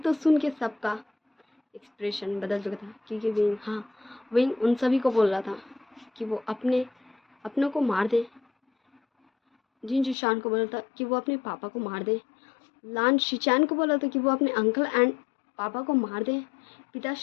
सुन के सबका एक्सप्रेशन बदल चुका था, क्योंकि विंग उन सभी को बोल रहा था कि वो अपनों को मार दे। जिन जिशान को बोला था कि वो अपने पापा को मार दे, लान शिचैन को बोला था कि वो अपने अंकल एंड पापा को मार दे,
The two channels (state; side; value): drops out; right; at 10.2 s